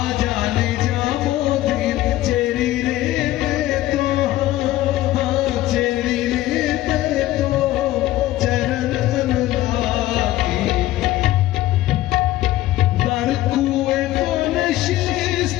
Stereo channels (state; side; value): quieter; right; 15.5 dB